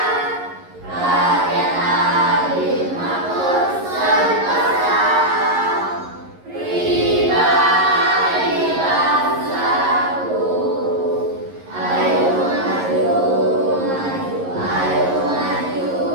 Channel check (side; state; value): left; late; 11 ms